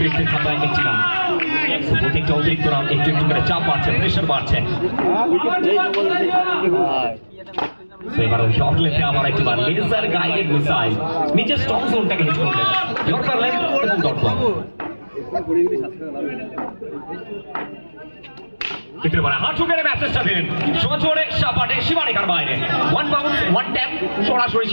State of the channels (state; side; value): inverted; both; correlation -1.00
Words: খাতায় একটি রান, প্রত্যেকটা অতিরিক্ত রান একটু একটু করে চাপ বাড়ছে, প্রেশার বাড়ছে। এবারে শর্ট লেগে আবার একবার লেজার গাইডেড মিসাইল নিচের স্ট্রং জোনটাকে হিট করলেন, ইয়র্কার লেগ এবং ডট বল। কিন্তু এবারে হাত ঠুকেরে ম্যাচটা দিলেন সজোরে সাপাটে সীমারেখার বাইরে, 1 বাউন্স 1 ট্যাপ, সরাসরি